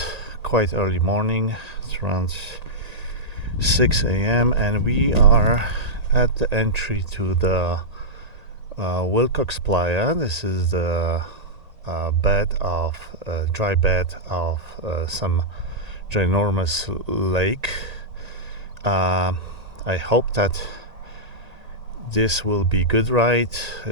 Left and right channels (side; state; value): left; late; 1.8 ms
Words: quite early morning, it's around 6 a.m., and we are at the entry to the Willcox Playa. This is the dry bed of some ginormous lake. I hope that this will be good ride,